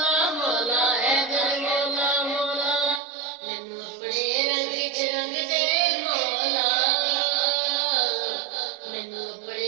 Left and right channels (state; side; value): drops out; left; at 3.0 s